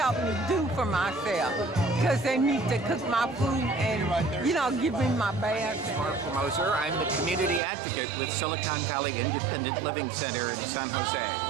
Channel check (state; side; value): drops out; left; at 7.6 s